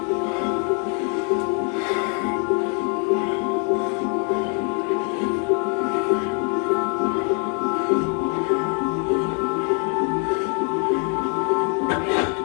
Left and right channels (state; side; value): quieter; right; 37.5 dB